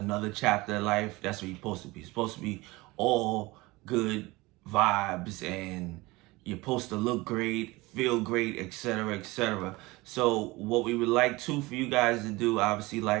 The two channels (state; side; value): quieter; left; 21.9 dB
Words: chapter of life, that's what you're supposed to be. It's supposed to be all good vibes, and you're supposed to look great, feel great, etc., etc. So what we would like for you guys to do, obviously,